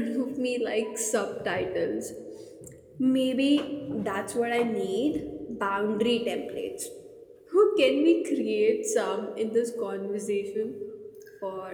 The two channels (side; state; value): both; identical; correlation 1.00